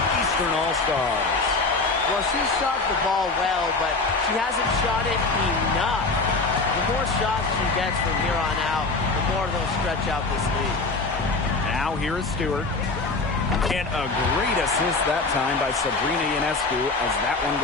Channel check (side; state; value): right; quieter; 3.7 dB